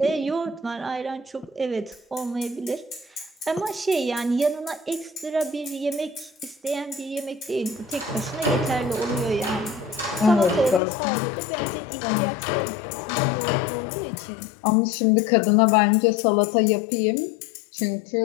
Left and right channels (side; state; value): right; drops out; at 10.8 s